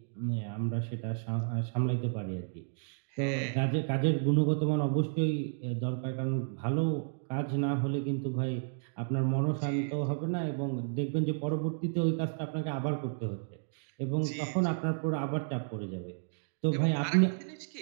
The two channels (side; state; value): left; silent; digital silence